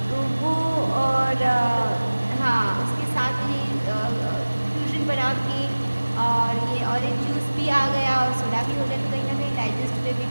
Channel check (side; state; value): both; inverted; correlation -1.00